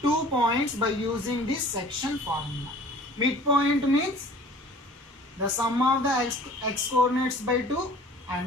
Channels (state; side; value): normal; both; correlation 0.47